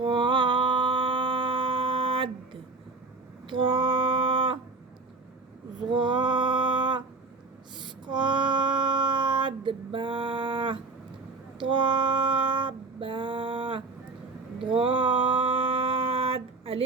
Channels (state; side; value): quieter; left; 3.7 dB